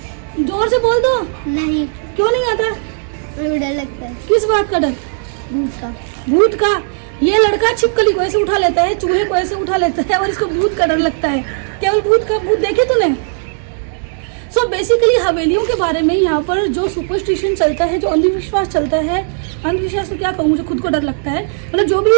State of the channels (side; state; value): left; silent; digital silence